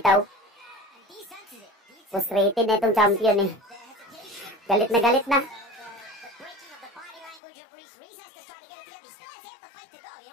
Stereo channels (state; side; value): drops out; right; at 7.4 s